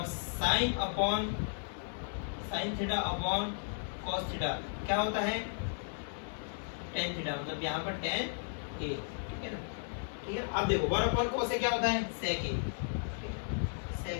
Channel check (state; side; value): silent; right; digital silence